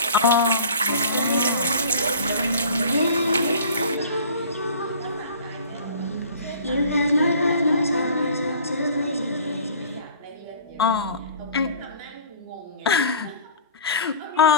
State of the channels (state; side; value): inverted; both; correlation -0.45